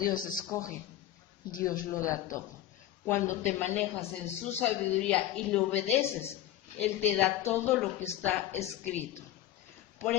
escoge, Dios lo da todo. Cuando te manejas en su sabiduría y le obedeces, Él te da todo lo que está escrito. Por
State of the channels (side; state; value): right; quieter; 12.8 dB